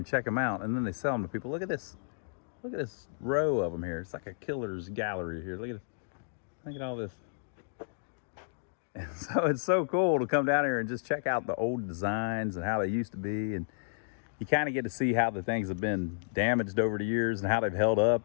check them out, and then they sell them to people. Look at this. Look at this row of them here. It's like a killer's gallery here. Look at all this. And so it's so cool to come down here and just check out the old designs and how they used to be. And you kind of get to see how the things have been damaged over the years and how they've held up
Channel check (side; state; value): right; silent; digital silence